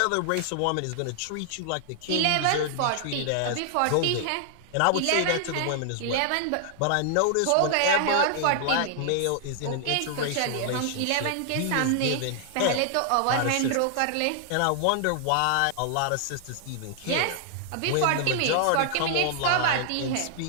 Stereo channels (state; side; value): different; both; correlation 0.00